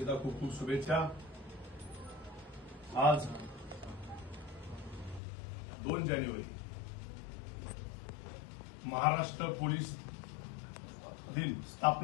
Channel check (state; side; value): drops out; right; at 5.2 s